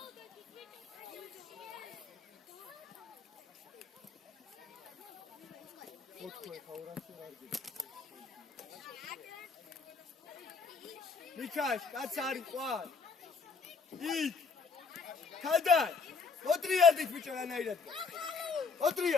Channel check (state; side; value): quieter; right; 4.8 dB